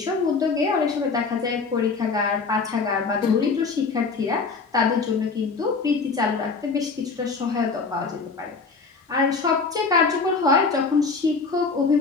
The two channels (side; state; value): right; quieter; 4.5 dB